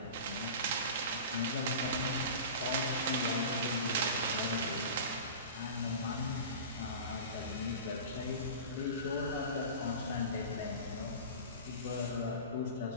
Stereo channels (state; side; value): inverted; both; correlation -0.33